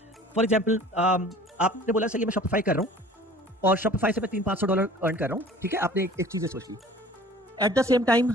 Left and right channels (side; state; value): both; normal; correlation 0.47